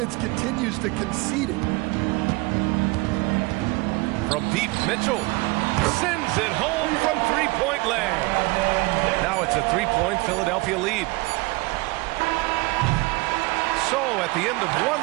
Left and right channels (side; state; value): left; quieter; 24.0 dB